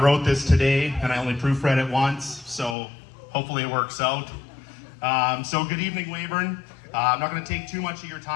this today and I only proofread it once, so hopefully it works out. So good evening, Weyburn. I'm not going to take too much of your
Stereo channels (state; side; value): drops out; right; at 2.8 s